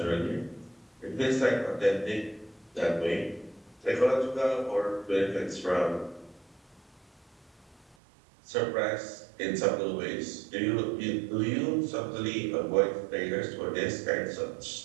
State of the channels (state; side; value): drops out; left; at 8.0 s